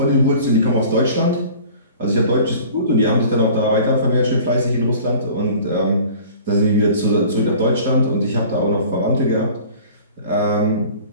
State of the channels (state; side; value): inverted; both; correlation -0.46